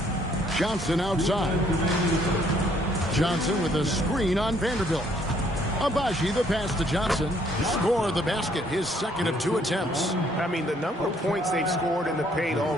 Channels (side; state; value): both; normal; correlation 0.65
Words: Johnson outside. Johnson with a screen on Vanderbilt. Abaji the pass to Johnson. Score the basket, his second of 2 attempts. I mean, the number of points they've scored in the paint